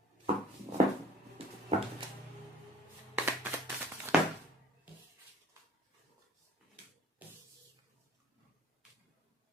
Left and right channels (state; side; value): normal; both; correlation 0.51